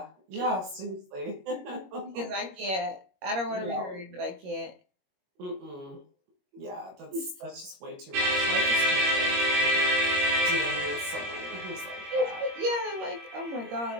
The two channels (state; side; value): late; left; 21 ms